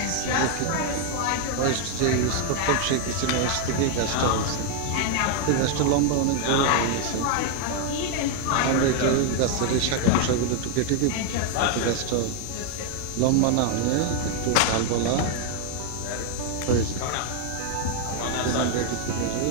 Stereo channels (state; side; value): different; both; correlation 0.00